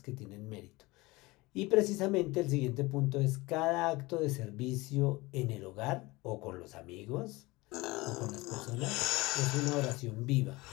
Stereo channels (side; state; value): right; quieter; 22.1 dB